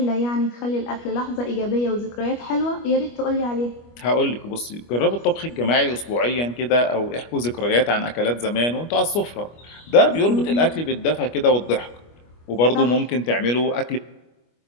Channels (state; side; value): late; right; 25 ms